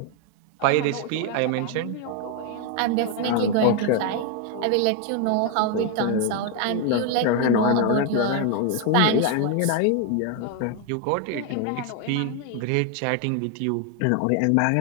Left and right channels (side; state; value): both; different; correlation 0.01